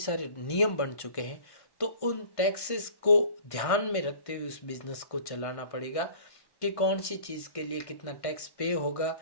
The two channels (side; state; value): right; late; 1.5 ms